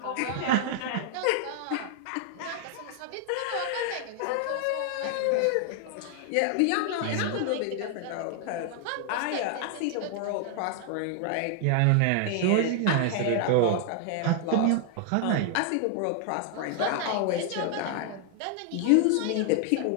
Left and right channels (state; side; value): different; both; correlation 0.00